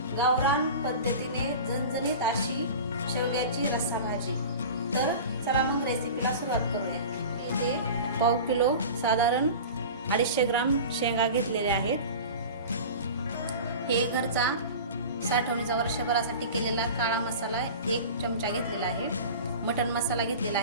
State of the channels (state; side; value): inverted; both; correlation -0.35